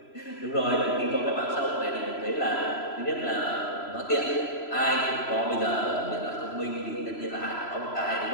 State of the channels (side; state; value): right; late; 3.0 ms